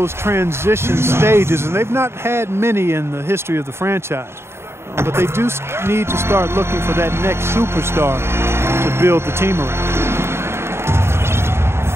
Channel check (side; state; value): left; late; 0.12 ms